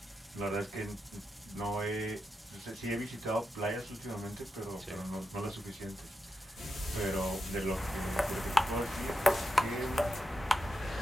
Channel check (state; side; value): normal; both; correlation 0.87